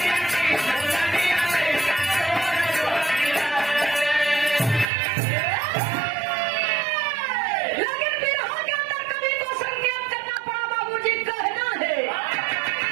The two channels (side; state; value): left; drops out; at 4.9 s